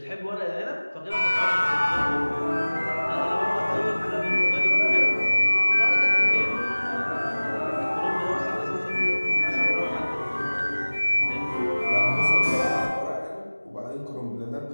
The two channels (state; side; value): inverted; both; correlation -1.00